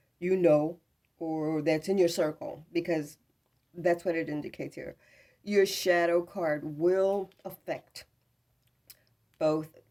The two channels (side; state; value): both; identical; correlation 1.00